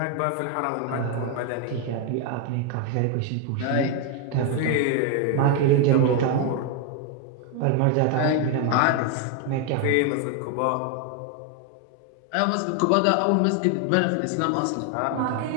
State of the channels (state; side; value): different; both; correlation 0.01